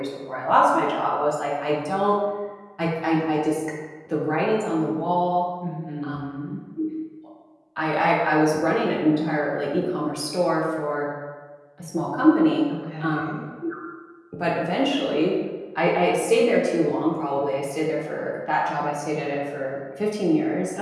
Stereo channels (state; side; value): identical; both; correlation 1.00